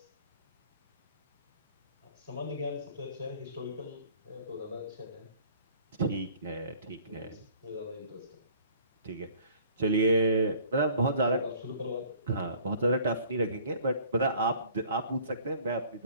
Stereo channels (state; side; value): inverted; both; correlation -0.53